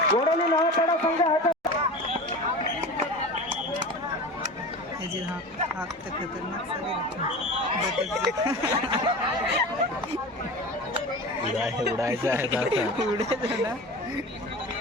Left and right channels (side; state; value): both; normal; correlation 0.32